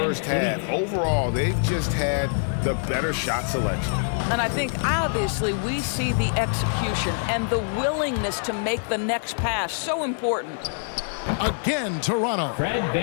half, overall, they've just had the better shot selection. And I think, obviously, we see the execution and the willingness to make the next pass. So important. Again, Toronto.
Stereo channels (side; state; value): right; silent; 62 dB below the other